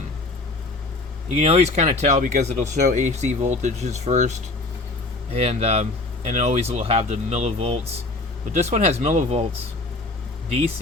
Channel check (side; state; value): right; quieter; 3.0 dB